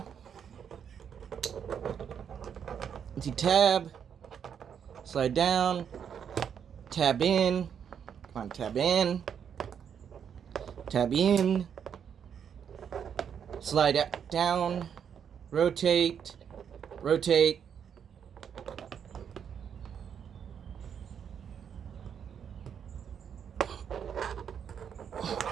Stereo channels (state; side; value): quieter; left; 7.9 dB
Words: Tab, slide down, tab in, come on, tab in, slide down, rotate,